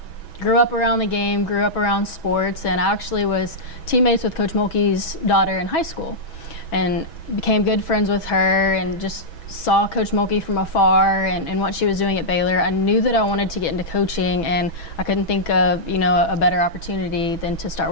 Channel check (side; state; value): right; late; 6.1 ms